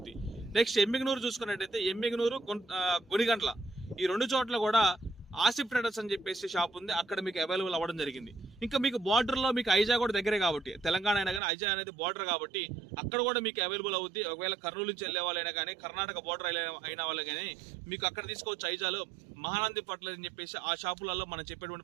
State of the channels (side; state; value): left; drops out; at 11.4 s